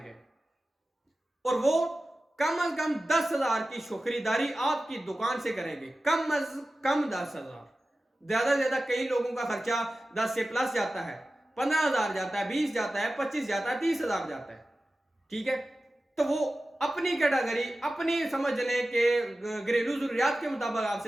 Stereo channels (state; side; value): normal; both; correlation 0.95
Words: और वो कम अज कम 10,000 की खरीदारी आपकी दुकान से करेंगे। कम अज कम 10,000, ज्यादा से ज्यादा कई लोगों का खर्चा 10 से प्लस जाता है, 15,000 जाता है, 20 जाता है, 25 जाता है, 30,000 जाता है। ठीक है, तो वो अपनी कैटेगरी, अपनी समझ लें कि घरेलू जरूरियात के मुताबिक